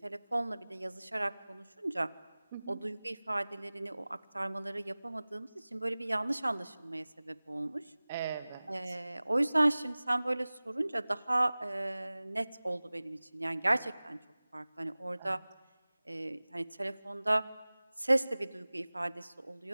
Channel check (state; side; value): inverted; both; correlation -0.99